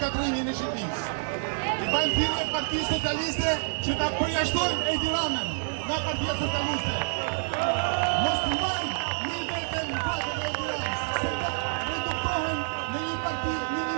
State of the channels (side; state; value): left; silent; digital silence